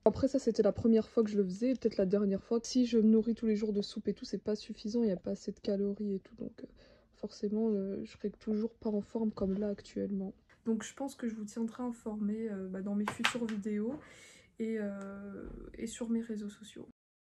Après ça c'était la première fois que je le faisais, peut-être la dernière fois. Si je me nourris tous les jours de soupe et tout, c'est pas suffisant, il n'y a pas assez de calories et tout. Donc forcément je serai toujours pas en forme comme là actuellement. Donc je pense que je vous tiendrai informé dans mes futures vidéos et sur mes réseaux sociaux.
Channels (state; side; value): identical; both; correlation 1.00